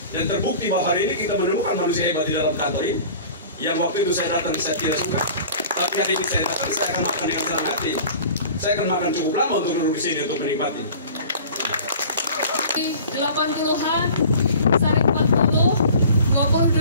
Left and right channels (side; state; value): both; inverted; correlation -0.43